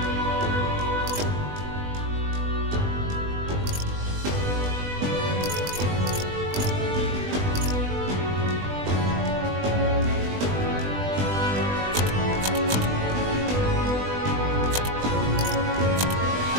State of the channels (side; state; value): left; late; 20 ms